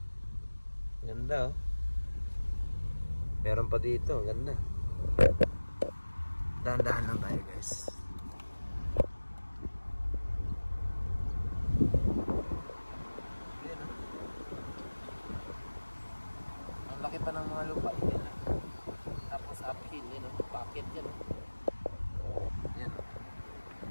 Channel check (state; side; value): inverted; both; correlation -1.00